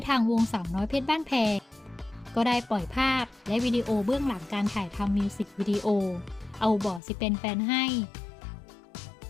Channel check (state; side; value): drops out; right; at 7.0 s